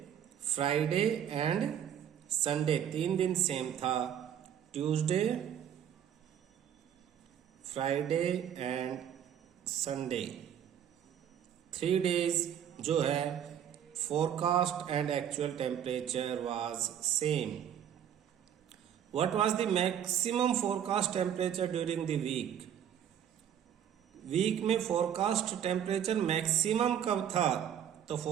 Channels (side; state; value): left; quieter; 9.5 dB